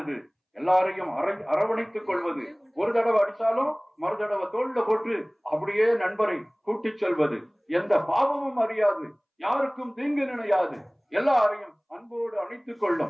எல்லாரையும் அரவணைத்துக் கொள்வது, ஒரு தடவை அடிச்சாலும் மறு தடவை தோல்ல போட்டு அப்படியே நண்பரை கூட்டிச் செல்வது, எந்த பாவமும் அறியாது, யாருக்கும் தீங்கு நினையாது, எல்லாரையும் அன்போடு அணைத்துக்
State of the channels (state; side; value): identical; both; correlation 1.00